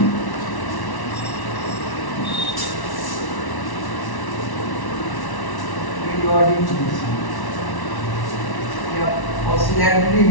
Periodic motion. Yeah, oscillatory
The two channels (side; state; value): right; late; 1.1 ms